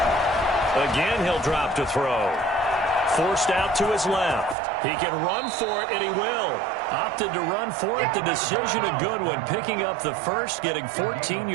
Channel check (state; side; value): drops out; left; at 4.5 s